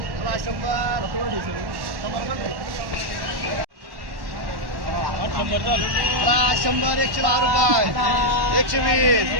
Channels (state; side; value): late; left; 1.1 ms